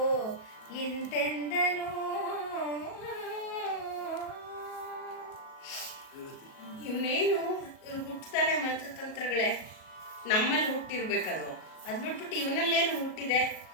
ಇಂತೆಂದನು. ಇವನೇನು ಹುಟ್ಟುತ್ತಲೇ ಮಂತ್ರತಂತ್ರಗಳೇ ನಮ್ಮಲ್ಲಿ ಹುಟ್ಟಿರ್ಬೇಕದು. ಅದು ಬಿಟ್ಬಿಟ್ಟು ಇವನಲ್ಲೇನು ಹುಟ್ಟಿದೆ?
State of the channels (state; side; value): late; right; 38 ms